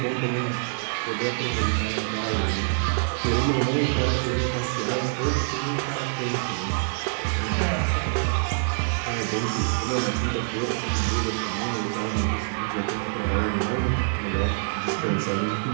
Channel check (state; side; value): silent; left; 61 dB below the other